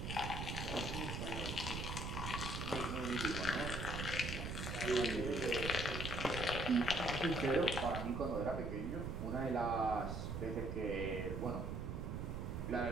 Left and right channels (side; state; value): right; noise; rumble, 3 dB below the sound